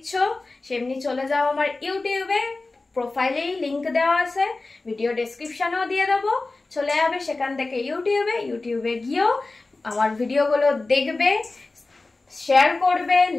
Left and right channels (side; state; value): right; quieter; 3.4 dB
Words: সেমনি চলে যাও আমার ইউটিউবে, প্রোফাইলেই লিংক দেওয়া আছে, ভিডিও ডেসক্রিপশনেও দিয়ে দেবো, চলে যাবে সেখান থেকে ইউটিউবে গিয়েও আমার ভিডিওগুলো দেখবে, শেয়ার করবে,